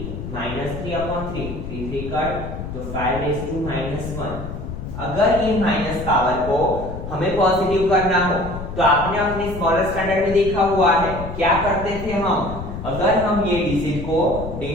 -3/3, 3 3 cut, तो 5/-1। अगर ये माइनस पावर को हमें पॉजिटिव करना हो तो आपने अपने स्मॉलर स्टैंडर्ड में देखा हुआ है क्या करते थे हम, अगर हम ये डिजिट को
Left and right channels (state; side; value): noise; left; rumble, 8 dB below the sound